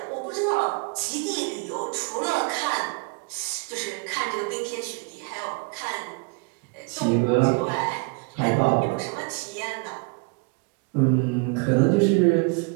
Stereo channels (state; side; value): quieter; left; 32.2 dB